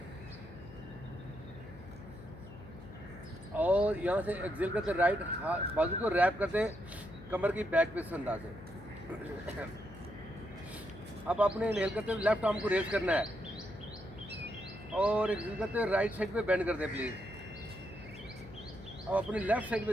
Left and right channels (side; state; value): left; noise; hum, 17 dB below the sound